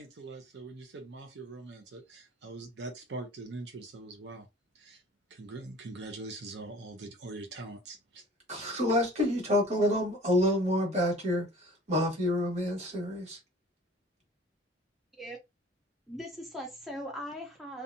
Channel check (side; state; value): both; normal; correlation 0.47